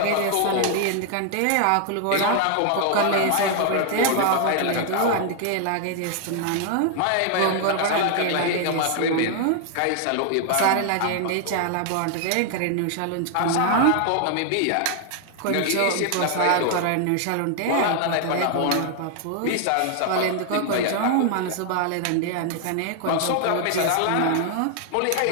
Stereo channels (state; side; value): different; both; correlation 0.00